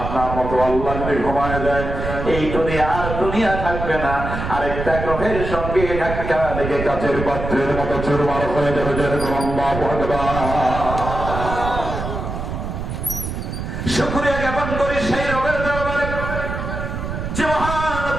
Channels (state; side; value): noise; right; rumble, 5 dB below the sound